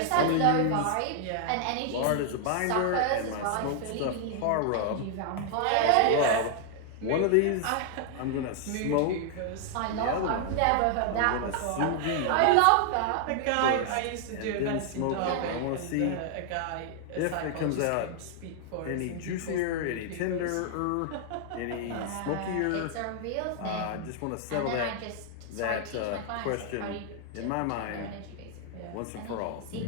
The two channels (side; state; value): both; different; correlation 0.00